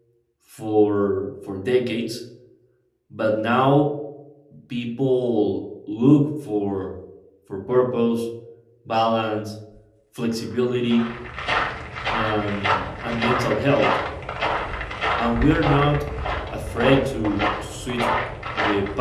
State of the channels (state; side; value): identical; both; correlation 1.00